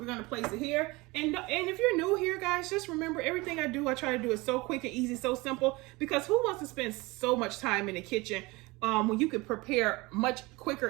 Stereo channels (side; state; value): left; quieter; 23.2 dB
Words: gonna place it here. And if you're new here, guys, just remember everything I try to do is so quick and easy, so simple, because who wants to spend so much time in the kitchen when you could prepare much